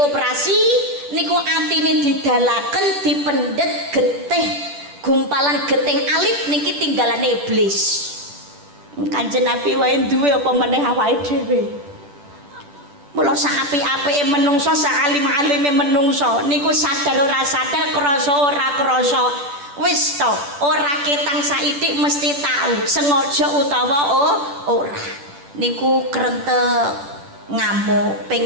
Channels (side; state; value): left; late; 10 ms